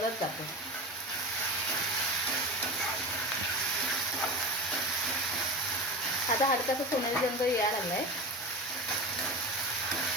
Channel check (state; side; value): normal; both; correlation 0.26